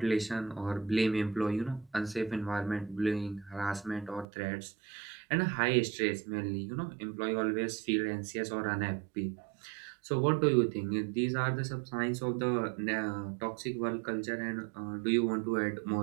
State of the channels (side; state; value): left; drops out; at 4.2 s